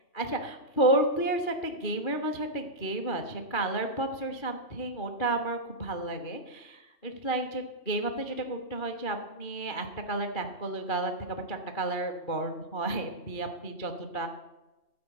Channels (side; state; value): right; late; 2.4 ms